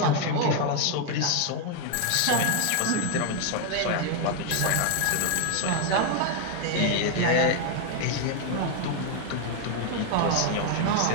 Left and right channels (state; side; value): different; both; correlation 0.01